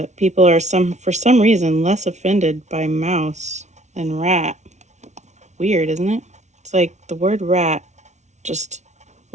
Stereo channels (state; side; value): late; left; 0.33 ms